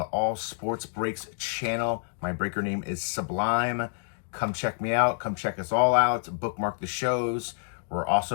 All Sports Breaks channel. My breaker name is Sublime. Come check me out. Come check us all out. Bookmark the shows. We're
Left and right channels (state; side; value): silent; right; digital silence